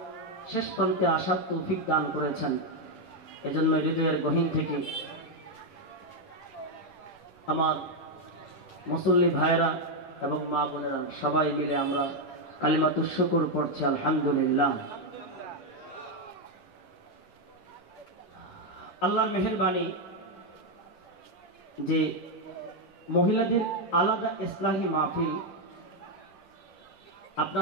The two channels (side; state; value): right; late; 10 ms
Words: শেষ প্রান্তে আসার তৌফিক দান করেছেন। এজন্য হৃদয়ের গহীন থেকে আমার মুসল্লি ভাইরা এবং মা বোনেরা সবাই মিলে আমরা কালিমাতুশ শুকর পড়ছি আলহামদুলিল্লাহ। আল্লাহর মেহেরবানি, যে মহিলাদের আলাদা ইসলাহি মাহফিল